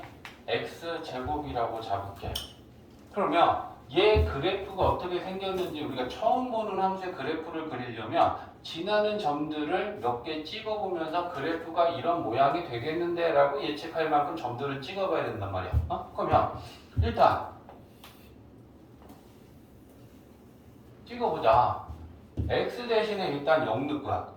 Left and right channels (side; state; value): both; identical; correlation 1.00